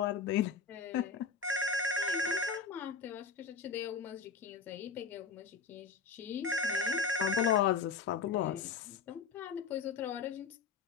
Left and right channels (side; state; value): right; quieter; 5.3 dB